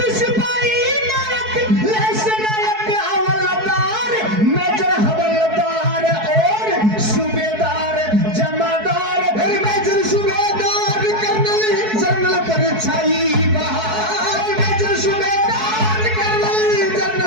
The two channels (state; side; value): late; left; 4.6 ms